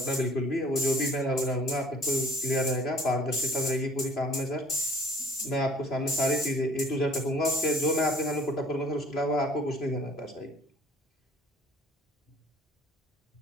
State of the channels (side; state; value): both; normal; correlation 0.54